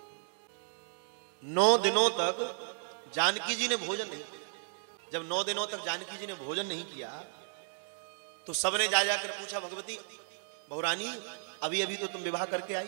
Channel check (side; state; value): left; silent; digital silence